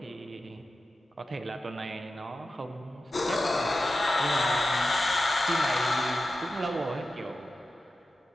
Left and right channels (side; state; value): both; normal; correlation 0.92